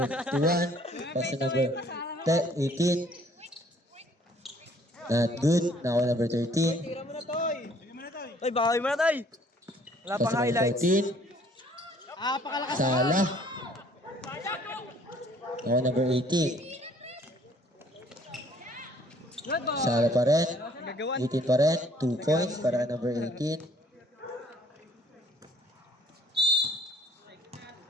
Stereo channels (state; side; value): normal; both; correlation 0.59